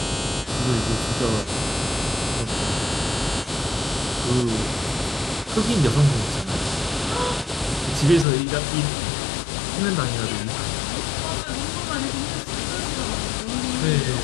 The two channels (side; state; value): right; drops out; at 8.2 s